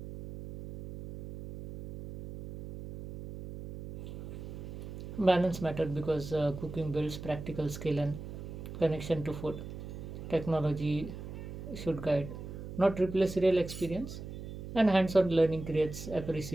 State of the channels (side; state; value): right; noise; hum, 10 dB below the sound